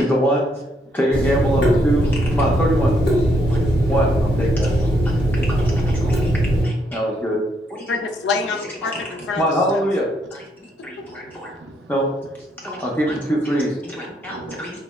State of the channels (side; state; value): both; normal; correlation 0.74